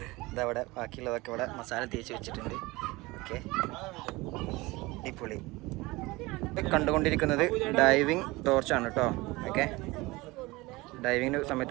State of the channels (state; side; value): quieter; left; 21.9 dB